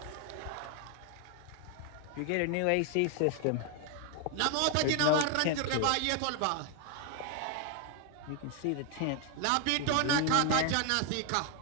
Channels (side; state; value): both; different; correlation 0.01